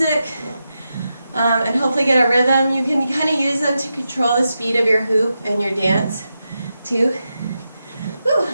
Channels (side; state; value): both; inverted; correlation -0.88